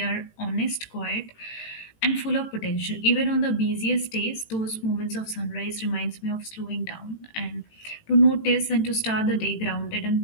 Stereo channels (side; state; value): right; late; 18 ms